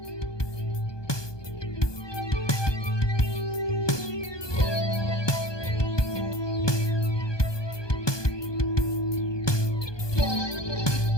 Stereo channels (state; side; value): late; right; 1.2 ms